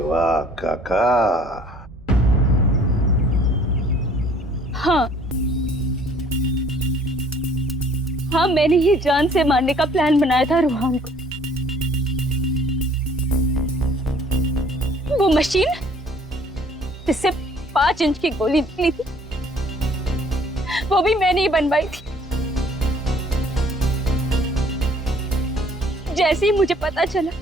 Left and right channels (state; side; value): normal; both; correlation 0.58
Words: काका। हाँ हाँ, मैंने ही जान से मारने का प्लान बनाया था रोहन को। वो मशीन जिससे 5 इंच की गोली निकली थी, वो भी मैंने ही बनवाई थी। जैसे ही मुझे पता चला